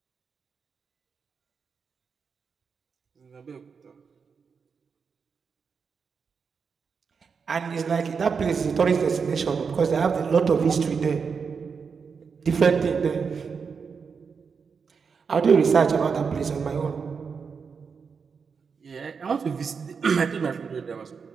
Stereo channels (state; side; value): quieter; left; 5.8 dB